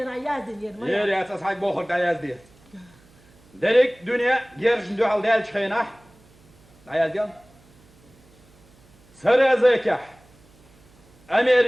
يازن يرمي يري أساس حق بوخر داياز دي دريك دنيا جيرش ندو على دال شخينح عيادين سرى زيكح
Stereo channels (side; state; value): right; noise; hum, 29 dB below the sound